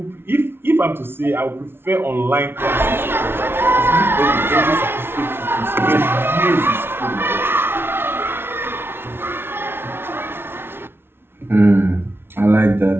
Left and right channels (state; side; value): late; left; 0.11 ms